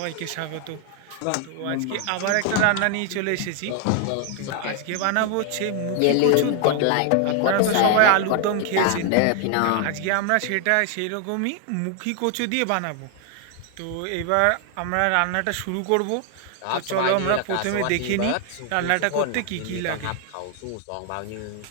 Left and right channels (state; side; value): different; both; correlation 0.00